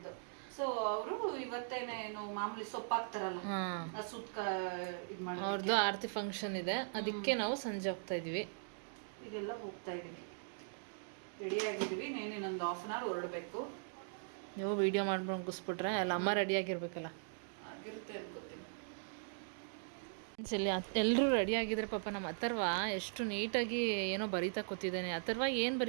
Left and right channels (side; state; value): left; silent; digital silence